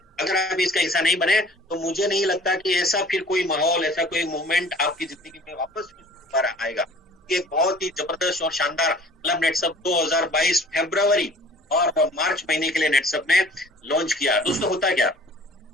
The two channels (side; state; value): both; normal; correlation 0.49